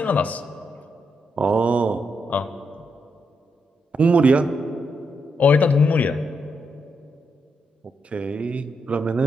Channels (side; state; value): both; normal; correlation 0.81